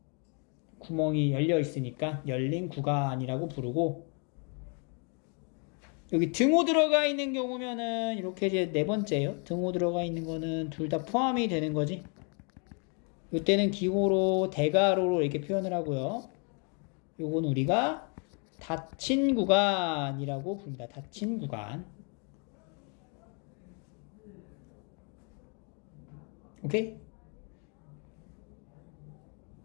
구멍이 열려 있으니까 열린 구간이라고 부르고, 여기 등호 들어가 있는 경우면은 이렇게 이제 네 번째예요. 등호 들어가 있는 거는 둘 다 포함이 되는 거지. 이때는 기호로 대괄호로 이렇게 표현을 하고요. 요건 우리가 닫힌 구간이라고 부릅니다. 닫힌 구간. 오케이?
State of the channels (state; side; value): quieter; right; 37.8 dB